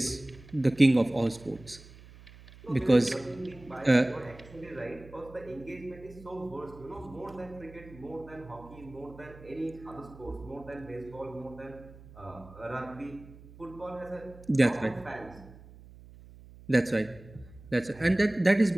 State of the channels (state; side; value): noise; right; hum, 20 dB below the sound